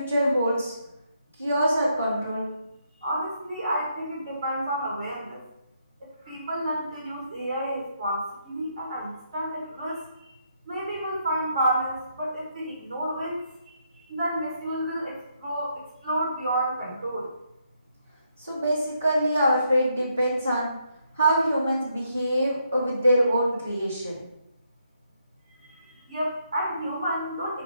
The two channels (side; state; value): both; inverted; correlation -0.77